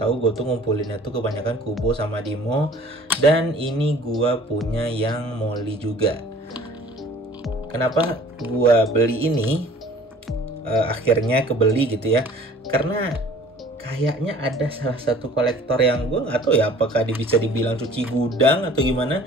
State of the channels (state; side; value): normal; both; correlation 0.50